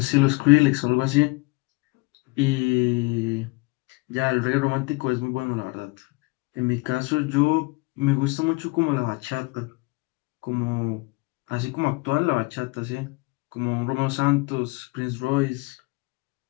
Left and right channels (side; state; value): right; quieter; 26.4 dB